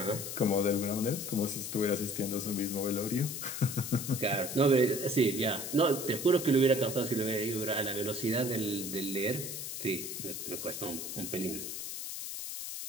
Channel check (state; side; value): noise; left; hiss, 6 dB below the sound